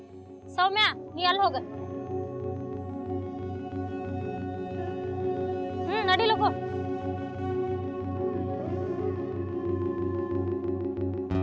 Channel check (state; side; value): identical; both; correlation 1.00